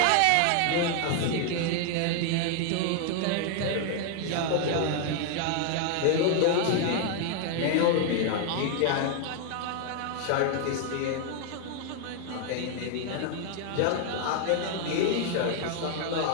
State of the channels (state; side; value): different; both; correlation 0.00